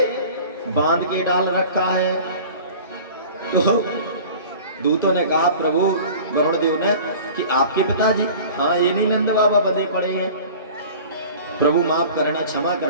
बांध के डाल रखा है। तो दूतों ने कहा प्रभु वरुण देव ने कि आपके पिताजी? हाँ, ये नहीं नंद बाबा बंधे पड़े हैं। प्रभु माफ करना, क्षमा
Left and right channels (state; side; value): inverted; both; correlation -0.42